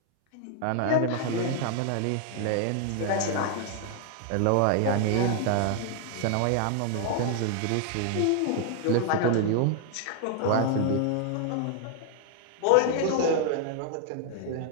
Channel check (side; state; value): both; different; correlation 0.00